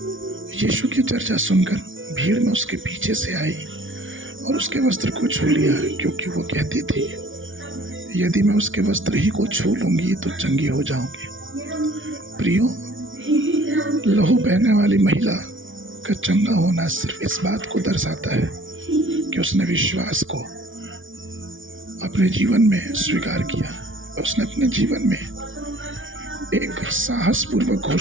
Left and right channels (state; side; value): late; left; 0.57 ms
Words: यीशु की चर्चा सुनकर भीड़ में उसके पीछे से आई और उसके वस्त्र को छू लिया, क्योंकि वो कहती थी, यदि मैं उसके वस्त्र ही को छू लूंगी तो चंगी हो जाऊंगी। प्रियो, लहू बहने वाली महिला का चंगा होना सिर्फ इस बात को दर्शाता है कि उसने विश्वास को अपने जीवन में स्वीकार किया। उसने अपने जीवन में एक साहसपूर्वक